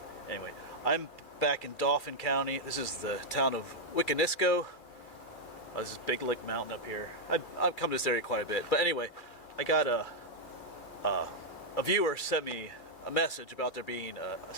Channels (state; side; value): late; right; 2.3 ms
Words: Anyway, I'm back in Dauphin County. This is the town of Wiconisco. This is Big Lick Mountain up here. I've come to this area quite a bit. But anyway, I got a viewer sent me a message about there being a